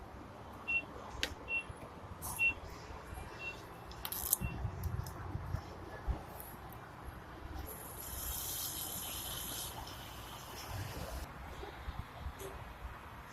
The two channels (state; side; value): identical; both; correlation 1.00